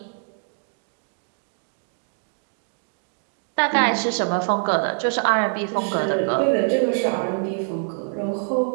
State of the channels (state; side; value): silent; left; 62 dB below the other